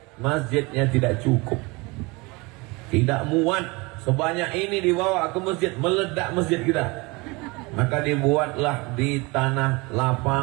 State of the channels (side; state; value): left; quieter; 25.5 dB